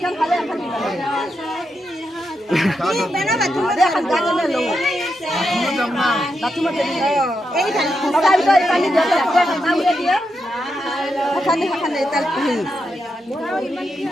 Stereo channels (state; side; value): normal; both; correlation 0.85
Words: খালে এখন বেনা বাতু দেখান গাজনে লো বাতু মতে এই খালি বাবা বিটা কালি দিয়া নামে দিয়া খালি খালি তাল পহি